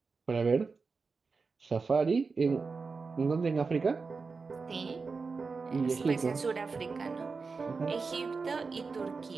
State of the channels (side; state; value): left; quieter; 4.6 dB